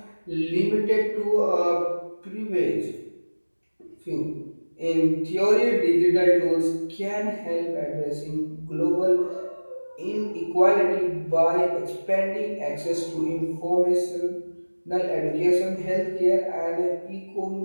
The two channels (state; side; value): inverted; both; correlation -1.00